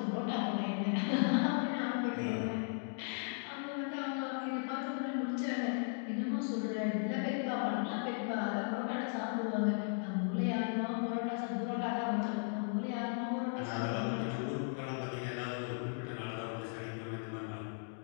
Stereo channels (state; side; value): silent; right; 53 dB below the other